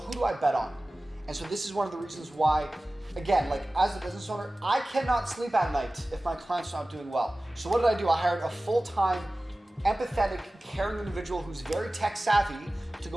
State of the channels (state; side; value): normal; both; correlation 0.97